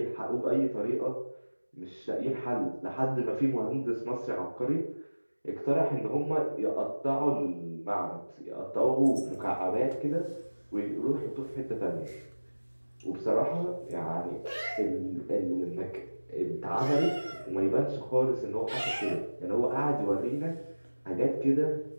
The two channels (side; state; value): both; inverted; correlation -1.00